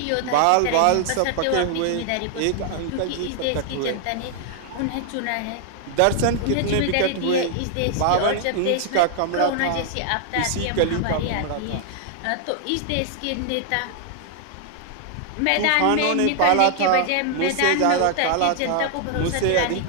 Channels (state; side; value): different; both; correlation 0.00